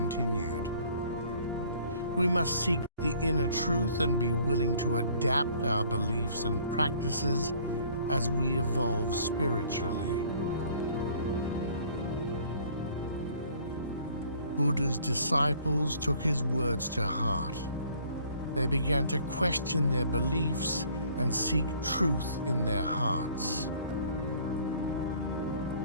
We must seek the inner truth and be willing to adapt our beliefs and practices as we evolve spiritually. Buddha's disciples took his words to heart. They began to question their beliefs and seek truth in their hearts.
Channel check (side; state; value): both; inverted; correlation -0.56